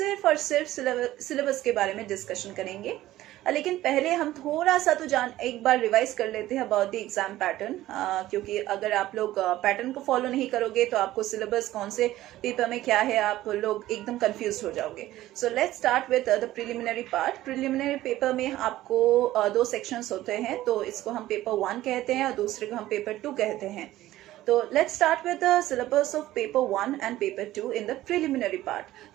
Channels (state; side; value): quieter; left; 15.2 dB